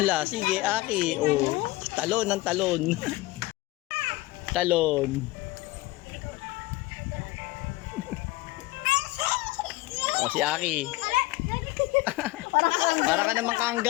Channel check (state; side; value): quieter; right; 19.7 dB